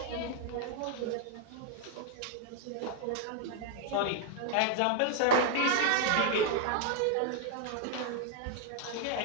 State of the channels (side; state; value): both; different; correlation 0.00